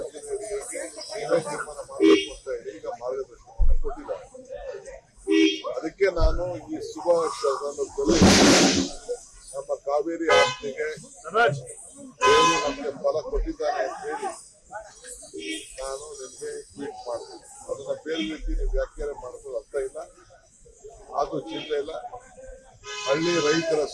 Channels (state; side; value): identical; both; correlation 1.00